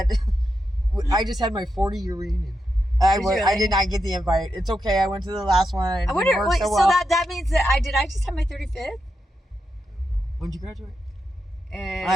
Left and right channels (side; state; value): both; normal; correlation 0.86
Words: I just had my 40-year reunion. I did not get the invite. It's okay. I went to the last one. I wonder. So that means that I just had my 35th. When did you graduate?